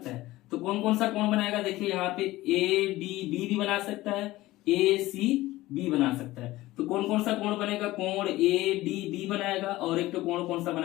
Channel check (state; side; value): quieter; right; 17.6 dB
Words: है, तो कौन कौन सा कोण बनाएगा, देखिए यहाँ पे ADB भी बना सकता है, ACB बना सकता है। तो कौन कौन सा कोण बनेगा, कोण ADB बनाएगा, और एक तो कोण कौन सा